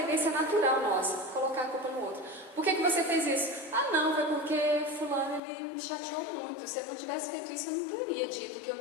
natural nossa, colocar a culpa no outro. Por que você fez isso? Não, foi porque fulano ele me chateou muito. Se eu não tivesse feito isso, eu não teria dito o que eu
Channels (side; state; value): right; drops out; at 5.4 s